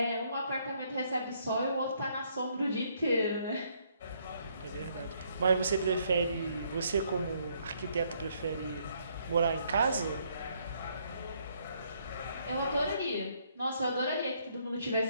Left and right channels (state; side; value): inverted; both; correlation -0.69